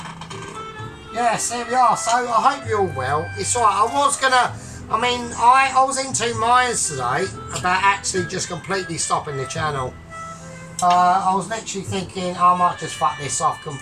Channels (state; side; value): identical; both; correlation 1.00